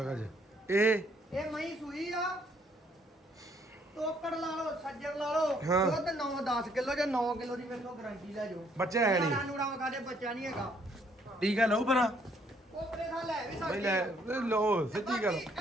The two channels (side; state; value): both; normal; correlation 0.67